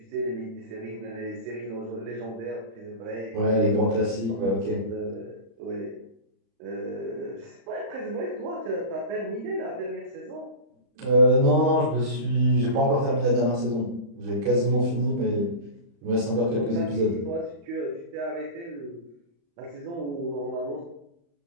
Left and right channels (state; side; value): late; left; 35 ms